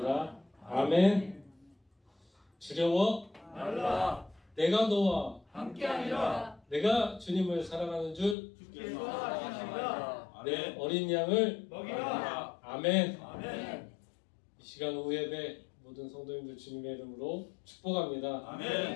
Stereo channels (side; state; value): right; drops out; at 8.3 s